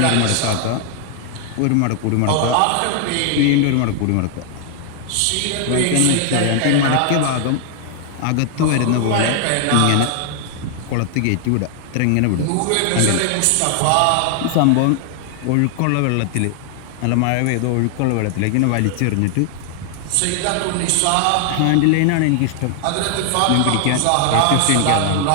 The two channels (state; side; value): different; both; correlation 0.00